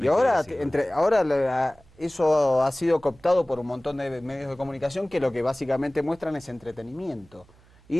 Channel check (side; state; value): right; noise; hum, 28 dB below the sound